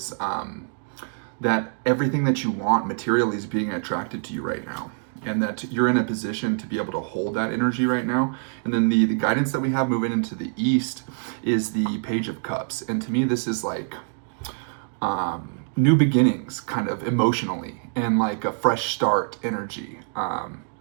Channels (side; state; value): left; silent; digital silence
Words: that everything that you want materially is being attracted to you right now, and that you're in a position to be able to hold that energy right now. And then the guidance that we have moving into the east is the Page of Cups. And to me, this is like new beginnings, kind of emotionally, and like a fresh start energy,